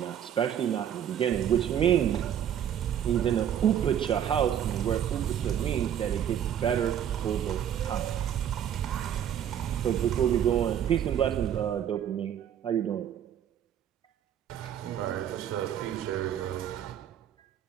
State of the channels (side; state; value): left; quieter; 9.7 dB